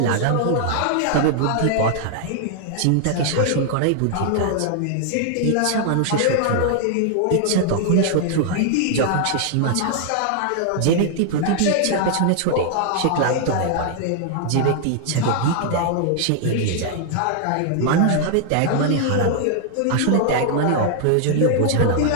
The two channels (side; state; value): both; different; correlation 0.00